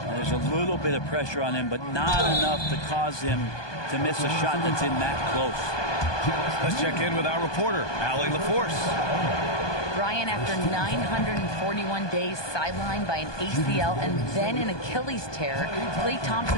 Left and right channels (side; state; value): right; late; 1.2 ms